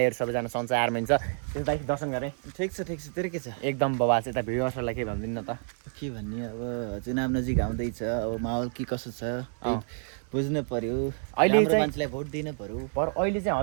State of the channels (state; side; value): silent; left; 59 dB below the other